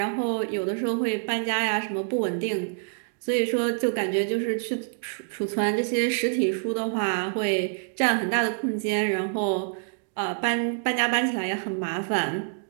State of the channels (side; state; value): left; silent; digital silence